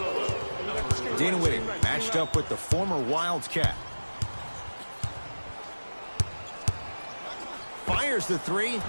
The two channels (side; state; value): both; inverted; correlation -1.00